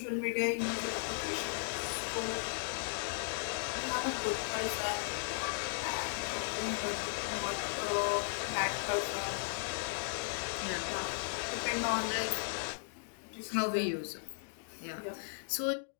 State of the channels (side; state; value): right; silent; digital silence